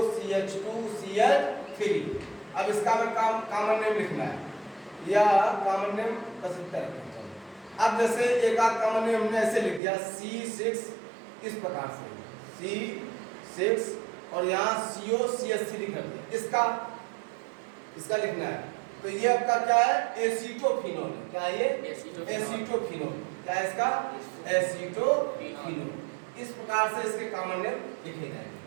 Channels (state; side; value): drops out; left; at 9.8 s